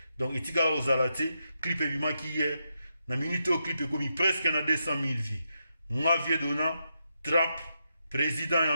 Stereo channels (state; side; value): inverted; both; correlation -0.84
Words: Donc etikala ozala te clip ebimaki hier na minute o clip ekomi presque na 200 000 vues. Nga vie dona trap président ya